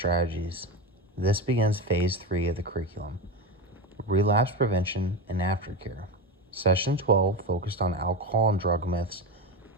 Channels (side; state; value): both; normal; correlation 0.20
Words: This begins Phase 3 of the curriculum, Relapse Prevention and Aftercare. Session 12 focused on alcohol and drug myths